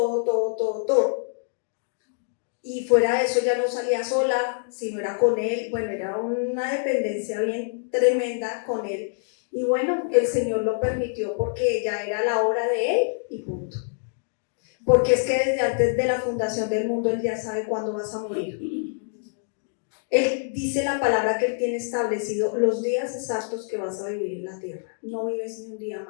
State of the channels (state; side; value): silent; right; digital silence